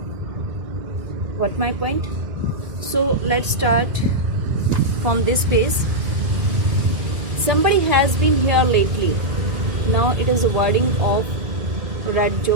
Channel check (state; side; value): late; left; 2.1 ms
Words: What my point? So let's start from this page. Somebody has been here lately. Now it is a wording of Red